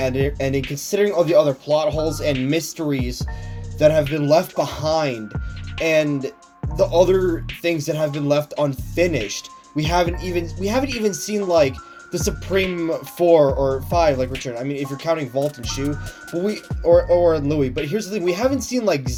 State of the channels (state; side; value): identical; both; correlation 1.00